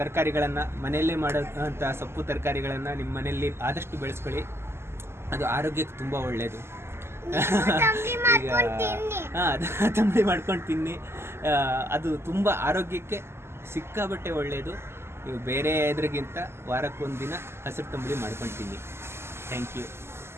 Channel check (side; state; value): left; late; 0.12 ms